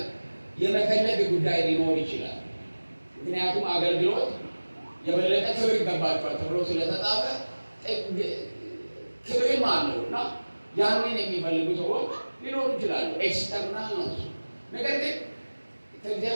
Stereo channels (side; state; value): both; inverted; correlation -1.00